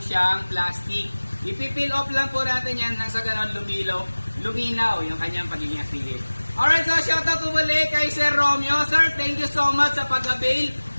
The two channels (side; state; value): both; inverted; correlation -1.00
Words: plastic. Ipipil off lang po natin yan nang sa ganon luminaw yung kanyang pagiging active. Alright, so shoutout po muli kay Sir Romeo. Sir, thank you so much sa pag-avail